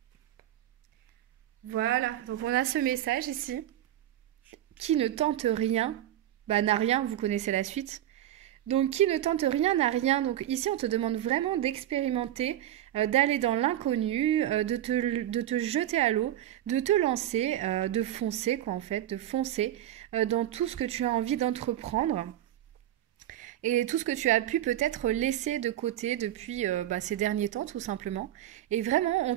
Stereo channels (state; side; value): quieter; left; 12.6 dB